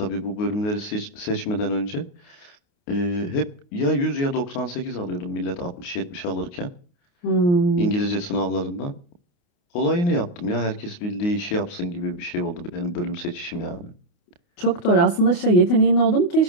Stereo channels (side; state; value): right; late; 29 ms